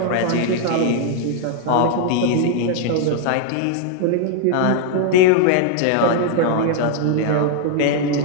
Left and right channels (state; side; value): different; both; correlation 0.00